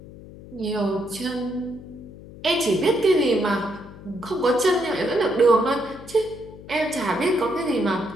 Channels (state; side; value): noise; left; hum, 17 dB below the sound